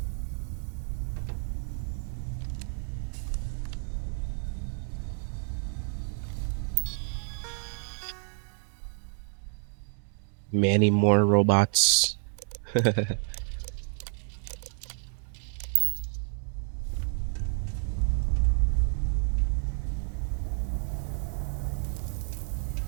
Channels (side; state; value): left; silent; 57 dB below the other